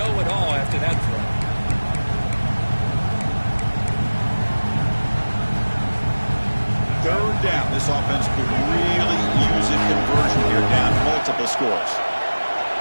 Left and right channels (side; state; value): both; inverted; correlation -1.00